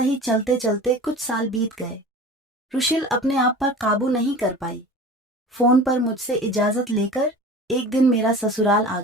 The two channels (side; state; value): both; normal; correlation 0.38